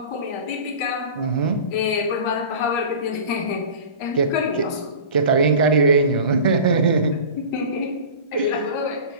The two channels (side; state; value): right; late; 1.4 ms